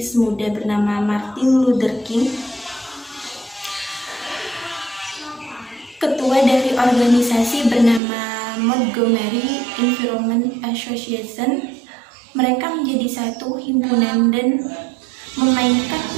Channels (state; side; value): drops out; left; at 8.0 s